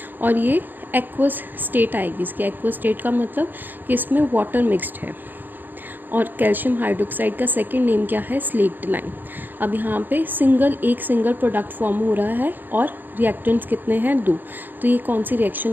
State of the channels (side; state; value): left; late; 0.088 ms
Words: और ये एक्वस स्टेट आएगी। इसके एक्वस स्टेट का मतलब कि इसमें वाटर मिक्स्ड है। और कैल्शियम हाइड्रोक्साइड का सेकंड नेम क्या है? Slaked lime. अब यहाँ पे एक सिंगल प्रोडक्ट फॉर्म हो रहा है और रिएक्टेंट्स कितने हैं? 2। तो ये कौन सी